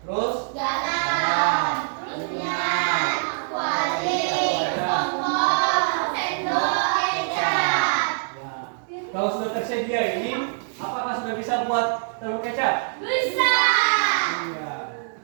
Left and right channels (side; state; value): left; silent; digital silence